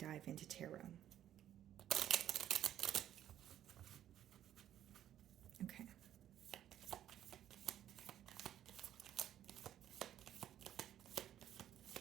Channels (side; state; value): left; quieter; 11.3 dB